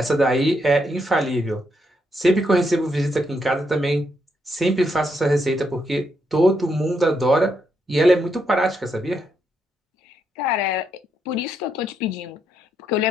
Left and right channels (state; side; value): normal; both; correlation 0.78